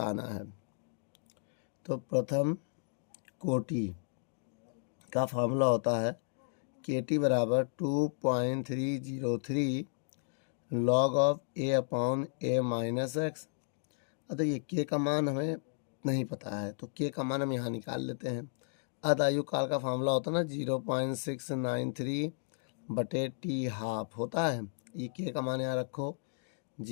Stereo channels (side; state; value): right; silent; digital silence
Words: है। तो प्रथम कोटि का फार्मूला होता है KT बराबर 2.303 log of A/A minus x. अब ये K का मान हमें नहीं पता है तो K का मान हम यहाँ निकाल लेते हैं। अर्ध आयु काल का फार्मूला होता है ना 0.693/T हाफ होता है। ये K का मान यहाँ रखो